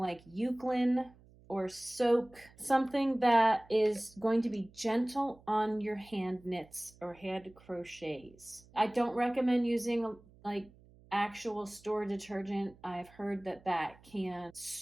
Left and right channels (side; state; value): right; noise; hum, 26 dB below the sound